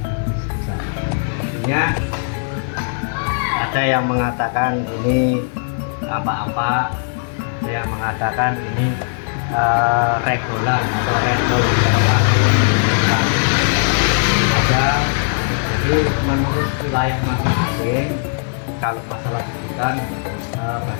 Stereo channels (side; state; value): right; silent; digital silence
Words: sebutan. Artinya ada yang mengatakan ini apa-apa, ada yang mengatakan ini regulan atau regol ada. Jadi menurut wilayah masing-masing, kalau masalah sebutan